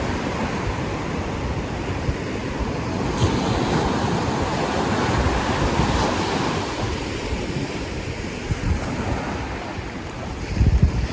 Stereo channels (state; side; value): identical; both; correlation 1.00